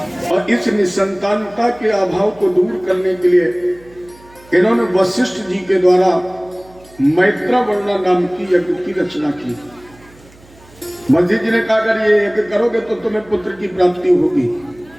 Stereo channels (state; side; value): noise; right; hum, 26 dB below the sound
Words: और इस निसंतानता के अभाव को दूर करने के लिए इन्होंने वशिष्ठ जी के द्वारा मैत्रावर्णा नाम की यज्ञ की रचना की। वशिष्ठ जी ने कहा, अगर ये यज्ञ करोगे तो तुम्हें पुत्र की प्राप्ति होगी।